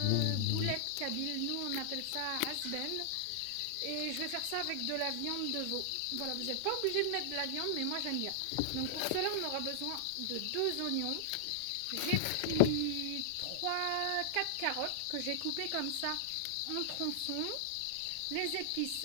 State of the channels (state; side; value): different; both; correlation -0.01